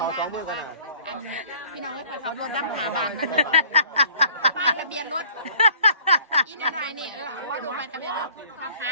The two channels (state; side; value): inverted; both; correlation -0.51